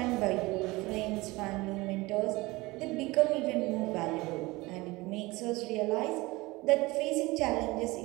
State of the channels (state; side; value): quieter; left; 21.7 dB